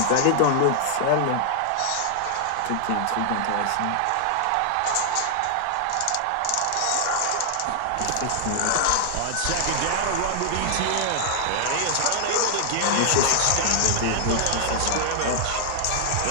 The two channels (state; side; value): different; both; correlation -0.01